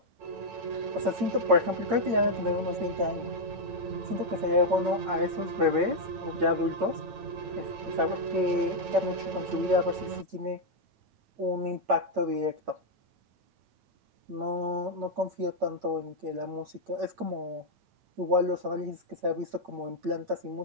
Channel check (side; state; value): left; late; 8.7 ms